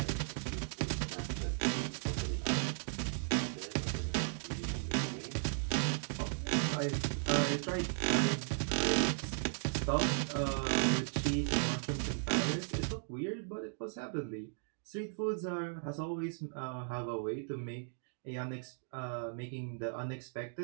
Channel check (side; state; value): left; silent; digital silence